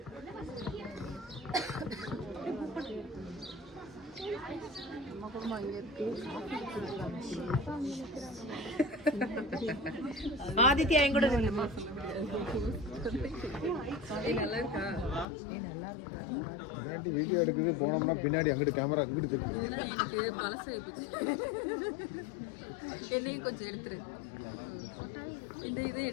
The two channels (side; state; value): right; drops out; at 15.2 s